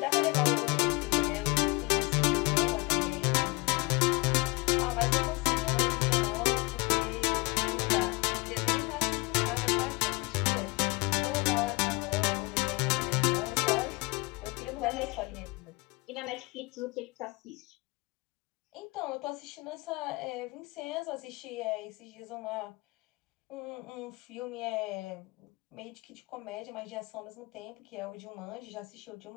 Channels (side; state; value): right; quieter; 25.7 dB